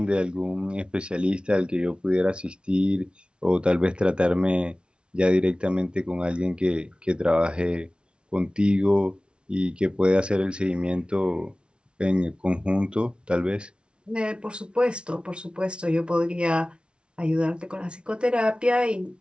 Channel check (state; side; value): late; left; 0.057 ms